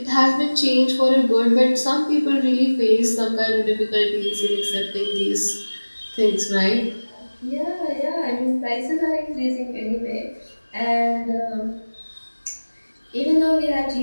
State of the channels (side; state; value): both; inverted; correlation -1.00